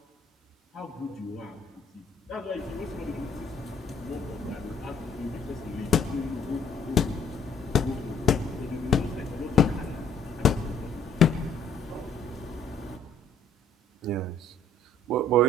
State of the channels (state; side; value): normal; both; correlation 0.61